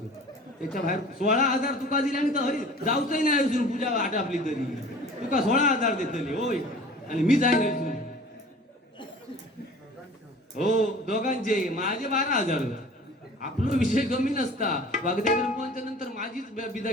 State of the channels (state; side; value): normal; both; correlation 0.44